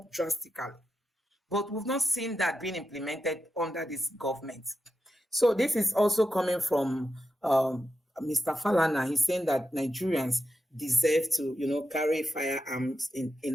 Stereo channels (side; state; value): both; normal; correlation 0.87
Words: drastically. But we've not seen that being implemented under this government. So this is also coming from Mr. Falana. He's saying that Nigerians deserve to, carry firearms